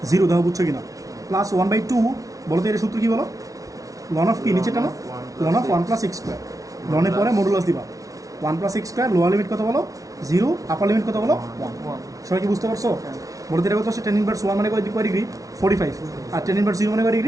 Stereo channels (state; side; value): late; left; 0.17 ms